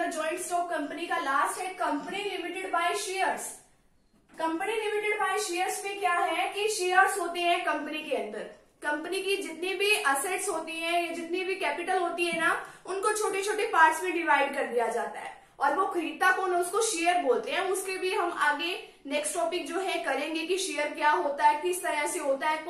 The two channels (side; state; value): both; identical; correlation 1.00